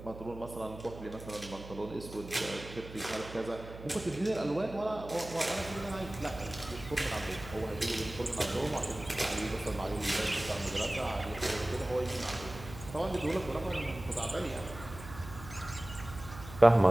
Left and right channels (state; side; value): noise; right; hum, 14 dB below the sound